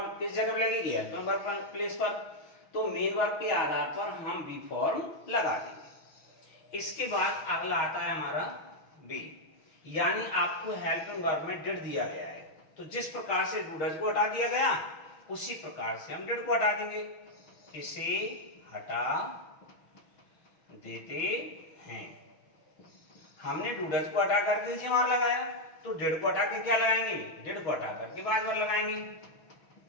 किस जगह पर लगेगी, हेल्पिंग वर्ब प्लेस पर, तो मेन वर्ब के आधार पर हम बी फॉर्म लगा देंगे। इसके बाद अगला आता है हमारा बी, यानी आपको हेल्पिंग वर्ब में डिड दिया गया है, तो जिस प्रकार से डू डज को हटा दिया गया उसी प्रकार से हम डिड को हटा देंगे। इसे हटा देते हैं। हमने डू डज को हटा करके इज एम आर लगाया, तो डिड को हटा के क्या लगाएंगे, डिड को हटा करके वाज वर्ब लगाएंगे।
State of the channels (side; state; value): right; late; 6.2 ms